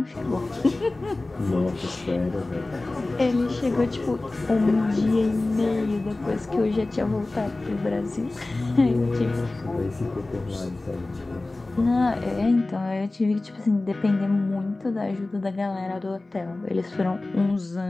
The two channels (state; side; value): quieter; right; 3.0 dB